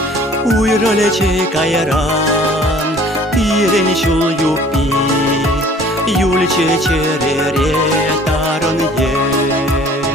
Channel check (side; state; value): both; normal; correlation 0.52